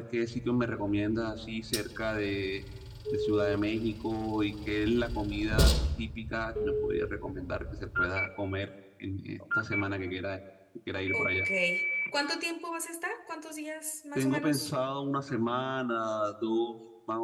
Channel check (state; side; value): identical; both; correlation 1.00